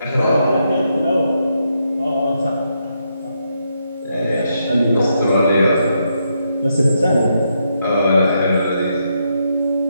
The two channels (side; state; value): both; inverted; correlation -0.80